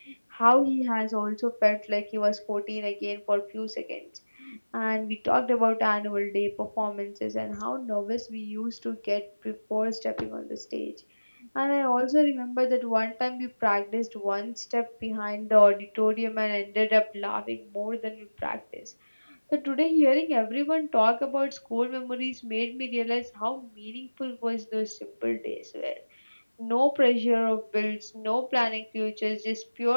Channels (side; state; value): both; inverted; correlation -1.00